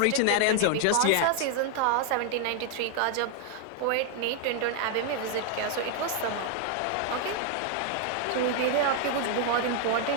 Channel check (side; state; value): both; different; correlation 0.00